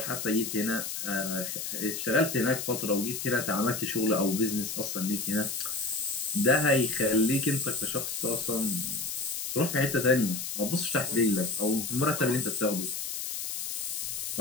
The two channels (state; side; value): noise; left; hiss, 4 dB below the sound